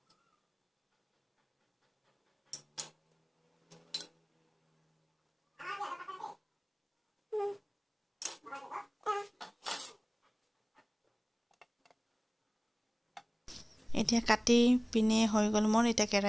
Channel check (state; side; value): identical; both; correlation 1.00